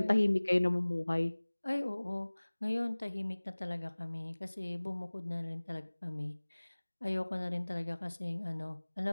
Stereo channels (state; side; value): inverted; both; correlation -1.00